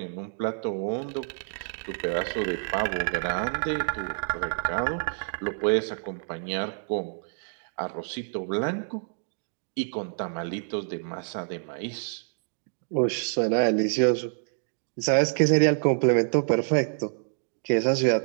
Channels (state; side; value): silent; left; digital silence